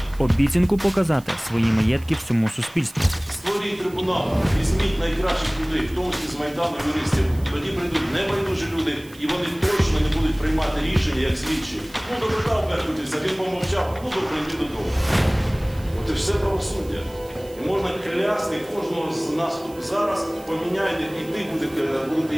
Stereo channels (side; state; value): right; noise; hiss, 22 dB below the sound